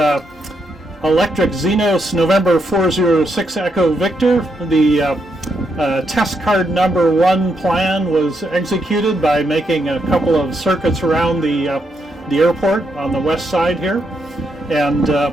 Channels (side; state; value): both; normal; correlation 0.79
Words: electric Xenos November 406 Echo Victor. The test card number 1 plan was executed by making a couple of circuits around the airport on the west side here. And